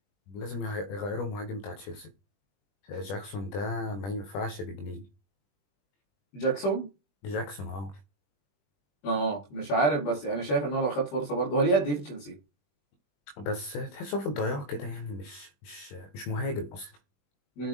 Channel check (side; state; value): right; late; 20 ms